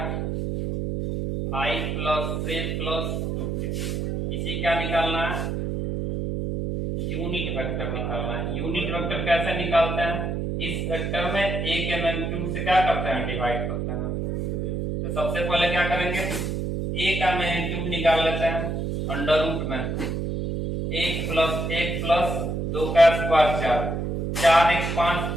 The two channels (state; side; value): noise; right; hum, 2 dB below the sound